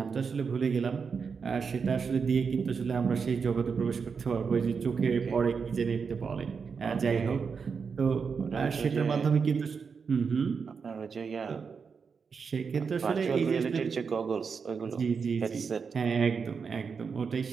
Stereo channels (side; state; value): left; quieter; 5.7 dB